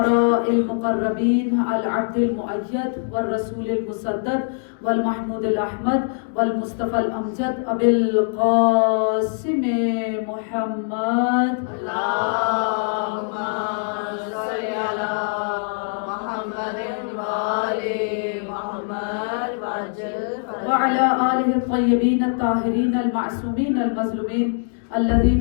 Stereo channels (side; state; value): right; silent; digital silence